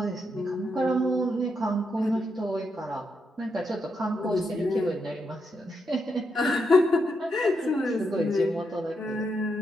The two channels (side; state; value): both; normal; correlation 0.81